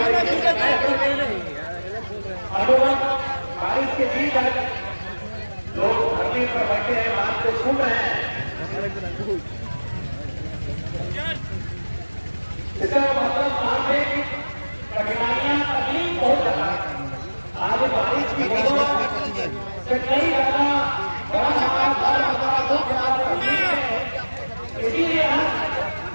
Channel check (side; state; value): both; inverted; correlation -1.00